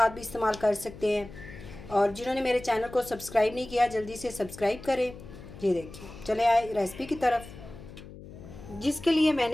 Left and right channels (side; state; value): left; noise; hum, 16 dB below the sound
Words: भी इस्तेमाल कर सकते हैं। और जिन्होंने मेरे चैनल को सब्सक्राइब नहीं किया जल्दी से सब्सक्राइब करें। ये देखिए, चले आए रेसिपी की तरफ। जिसके लिए